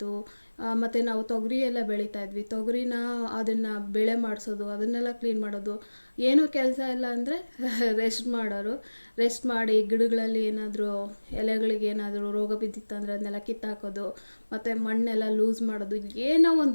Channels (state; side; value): inverted; both; correlation -1.00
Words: ಮತ್ತು ನಾವು ತೊಗರಿ ಎಲ್ಲ ಬೆಳೀತಾ ಇದ್ವಿ. ತೊಗರಿನ ಅದನ್ನು ಬೆಳೆ ಮಾಡಿಸೋದು, ಅದನ್ನೆಲ್ಲ ಕ್ಲೀನ್ ಮಾಡೋದು. ಏನೂ ಕೆಲಸ ಇಲ್ಲ ಅಂದರೆ ರೆಸ್ಟ್ ಮಾಡೋರು. ರೆಸ್ಟ್ ಮಾಡಿ ಗಿಡಗಳಲ್ಲಿ ಏನಾದರೂ ಎಲೆಗಳಿಗೆ ಏನಾದರೂ ರೋಗ ಬಿದ್ದಿತ್ತಂದರೆ ಅದನ್ನೆಲ್ಲ ಕಿತ್ತಾಕೋದು, ಮತ್ತು ಮಣ್ಣೆಲ್ಲ ಲೂಸ್ ಮಾಡೋದು. ಏನೋ